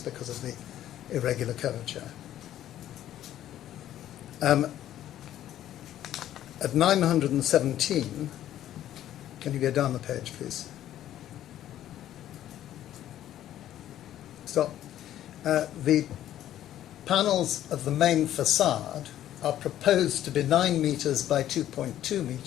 because of the irregular curvature. At 917, can you go down the page, please? Stop. The panels of the main facade are proposed to be 9 meters by 2.2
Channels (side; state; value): right; quieter; 12.2 dB